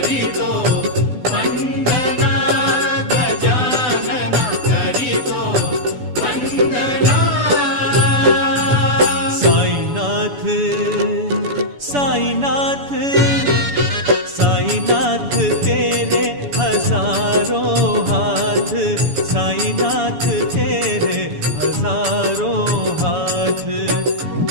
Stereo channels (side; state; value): left; late; 7.0 ms